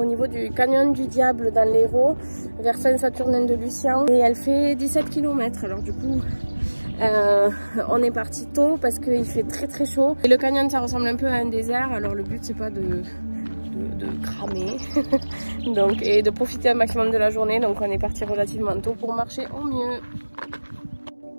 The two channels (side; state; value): both; inverted; correlation -1.00